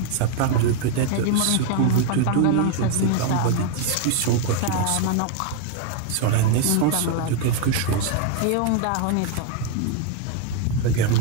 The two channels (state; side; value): different; both; correlation 0.00